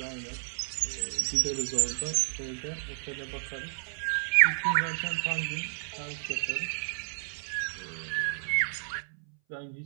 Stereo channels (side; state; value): left; silent; 57 dB below the other